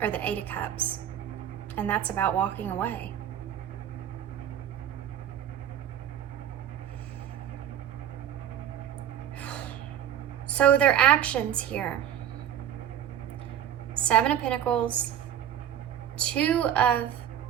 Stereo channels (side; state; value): left; quieter; 10.2 dB